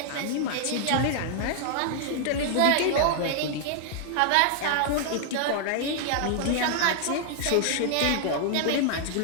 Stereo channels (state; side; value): different; both; correlation 0.00